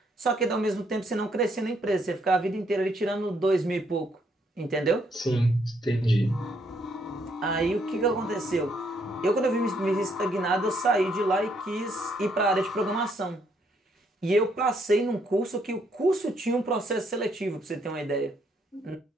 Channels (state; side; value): normal; both; correlation 0.71